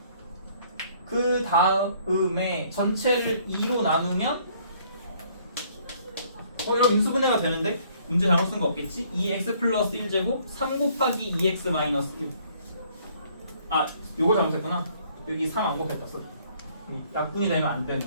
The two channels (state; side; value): inverted; both; correlation -0.62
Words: 그 다음에 전체를 2로 나누면 이런 인수분해가 되는데 문제 잘못 쓴 거 없겠지? 2x 플러스 1제곱 3 곱하기 2x 마이너스 1. 아, 요거 잘못했구나. 여기 3 안 곱했다. 소리. 약분이 되면 안 되는.